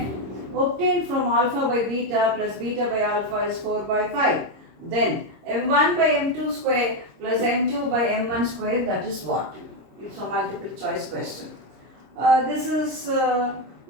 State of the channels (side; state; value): left; late; 26 ms